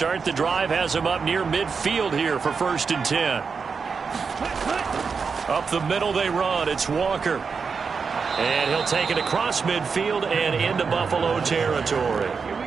the drive has him up near midfield here for 1st and 10. Up the middle they run. It's Walker. And he'll take it across midfield and into Buffalo territory.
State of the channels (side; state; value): left; quieter; 5.4 dB